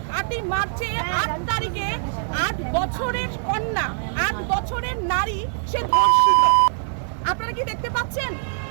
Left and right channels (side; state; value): left; silent; digital silence